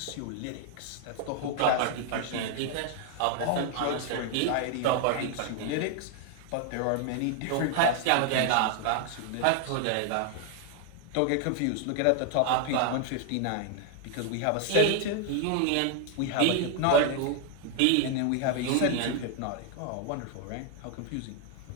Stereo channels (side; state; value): both; different; correlation 0.00